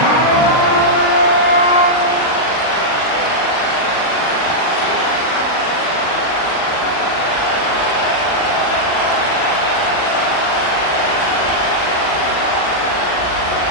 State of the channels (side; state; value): right; late; 39 ms